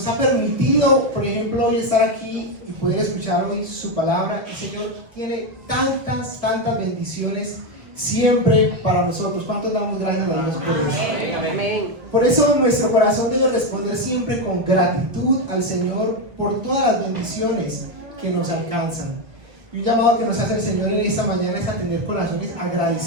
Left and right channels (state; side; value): late; left; 1.3 ms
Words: ha permitido, por ejemplo, hoy estar aquí y poder escuchar hoy su palabra. El Señor tiene tantas bendiciones siempre para nosotros. ¿Cuántos damos gracias a Dios por eso? Amén. Por eso nuestro corazón debe responder siempre con gratitud al Señor por todas las bendiciones que nos alcanzan. Y un llamado que nos hace el Señor en esta mañana es a tener corazones